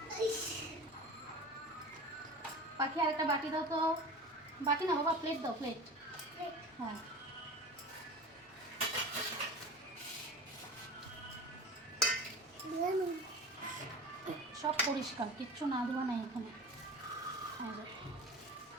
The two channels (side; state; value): both; normal; correlation 0.34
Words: পাখি আর একটা বাটি দাও তো। বাটি না বাবা, প্লেট দাও, প্লেট। হ্যাঁ, সব পরিষ্কার, কিচ্ছু না ধোয়া নাই এখানে।